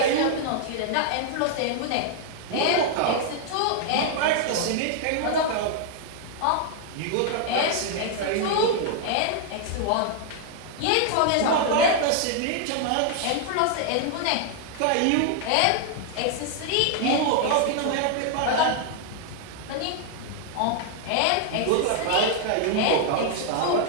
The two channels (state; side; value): different; both; correlation 0.00